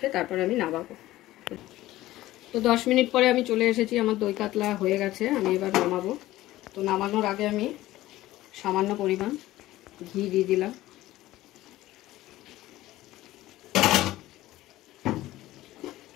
তারপর আমি নামাবো। তো 10 মিনিট পরে আমি চলে এসেছি, আমার দই কাতলা হয়ে গেছে। আমি এবার নামাবো। তো নামানোর আগে আমি সামান্য পরিমাণ ঘি দিয়ে দিলাম।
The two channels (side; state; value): right; quieter; 16.2 dB